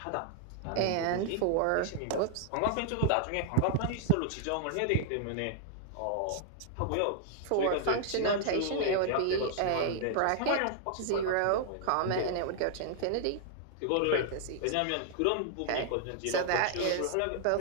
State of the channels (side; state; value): both; different; correlation 0.00